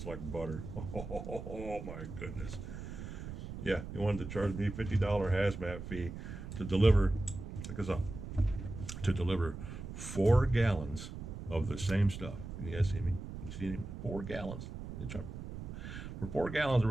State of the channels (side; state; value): right; noise; rumble, 9 dB below the sound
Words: like butter. Oh my goodness. Yeah, they wanted to charge me $50 hazmat fee to deliver, check this out, to deliver 4 gallons of the same stuff. Can you guys see me? You see me? 4 gallons. For 4 gallons,